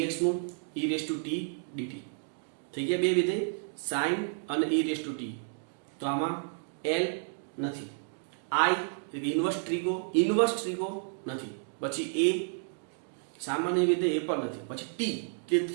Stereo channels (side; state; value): left; silent; digital silence